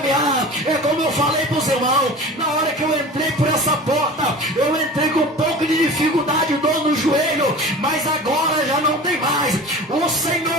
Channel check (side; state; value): both; normal; correlation 0.37